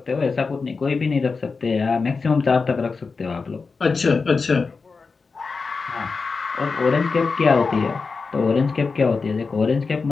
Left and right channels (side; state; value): right; quieter; 4.6 dB